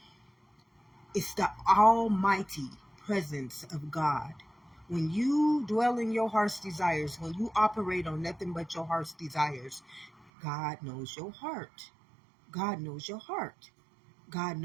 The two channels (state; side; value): drops out; left; at 10.3 s